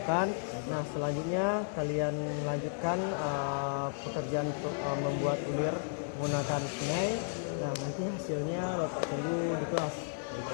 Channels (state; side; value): silent; right; digital silence